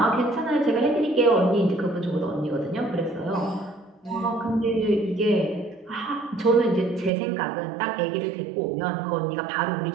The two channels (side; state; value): left; drops out; at 7.1 s